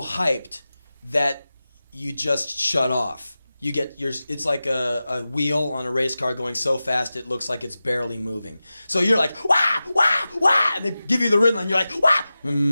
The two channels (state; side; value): inverted; both; correlation -0.95